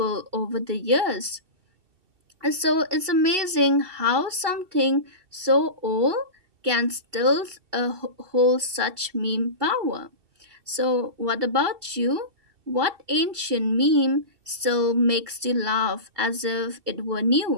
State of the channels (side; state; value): left; late; 2.7 ms